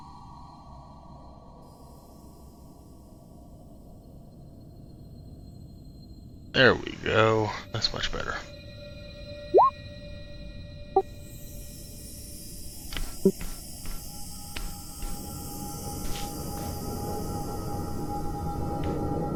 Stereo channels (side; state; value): both; identical; correlation 1.00